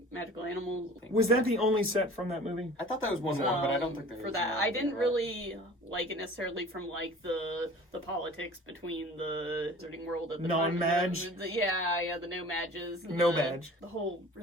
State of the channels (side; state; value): both; normal; correlation 0.44